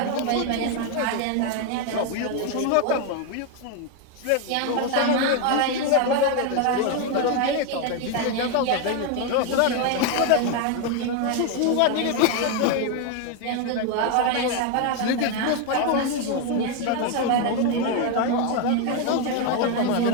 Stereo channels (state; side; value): different; both; correlation 0.01